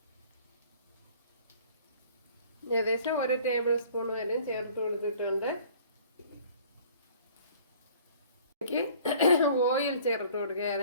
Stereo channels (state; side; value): inverted; both; correlation -0.52